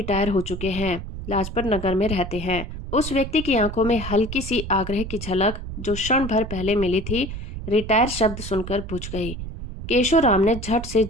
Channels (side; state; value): right; noise; rumble, 8 dB below the sound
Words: हो चुके हैं, लाजपत नगर में रहते हैं। उस व्यक्ति की आंखों में हल्की सी आग्रह की झलक जो क्षण भर पहले मिली थी, रिटायर शब्द सुनकर बुझ गई। केशोराम ने झट से